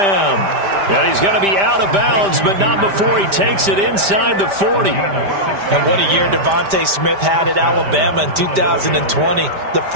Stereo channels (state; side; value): late; left; 5.1 ms